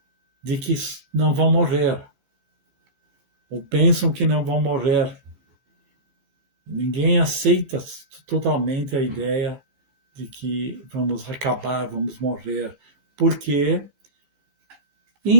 de que não vão morrer, ou pensam que não vão morrer. Ninguém aceita totalmente a ideia de que vamos acabar, vamos morrer, porque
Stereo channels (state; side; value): late; left; 15 ms